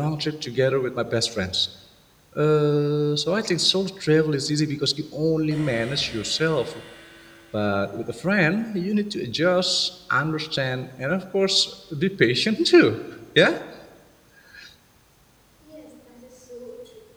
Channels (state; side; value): identical; both; correlation 1.00